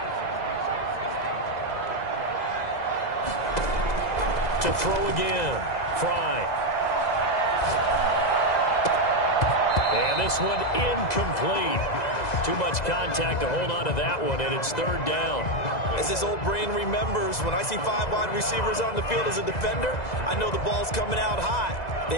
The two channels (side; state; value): right; late; 2.0 ms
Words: To throw again. Fry. And this one incomplete. Too much contact to hold on to that one, and it's 3rd down. As his old brain remembers, when I see 5 wide receivers on the field as a defender, I know the ball's coming out high.